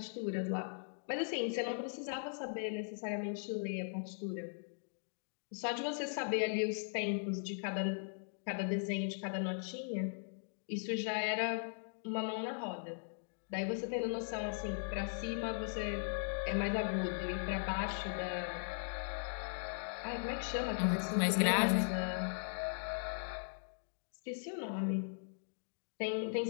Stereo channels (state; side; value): silent; right; digital silence